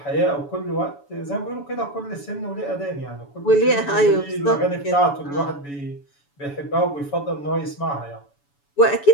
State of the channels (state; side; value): late; right; 7.0 ms